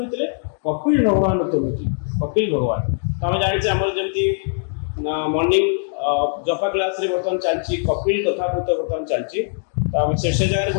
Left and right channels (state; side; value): silent; right; digital silence